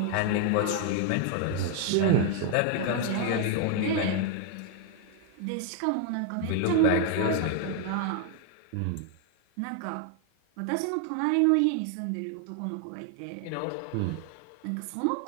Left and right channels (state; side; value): different; both; correlation 0.00